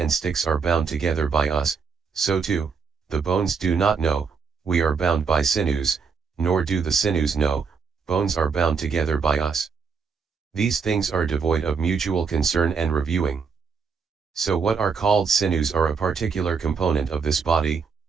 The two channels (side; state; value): left; quieter; 5.6 dB